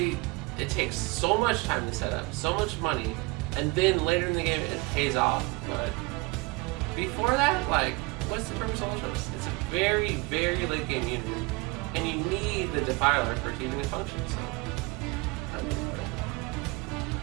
it takes so much time to set up, so much money, and then later in the game it pays off. But before that, like, what's the purpose of Ultralisk? It's a very, very late game unit, and you need the Defiler for it to even function. So, I mean,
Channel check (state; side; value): quieter; left; 25.7 dB